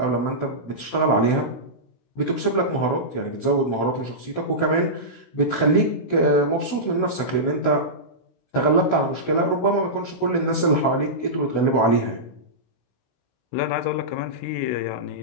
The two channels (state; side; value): late; right; 16 ms